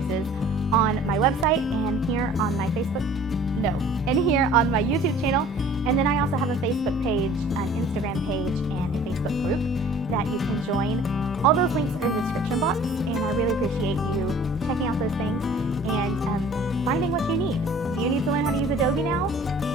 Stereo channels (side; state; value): both; normal; correlation 0.49